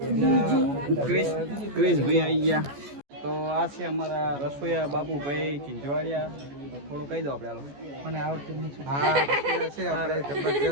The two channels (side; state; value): left; late; 14 ms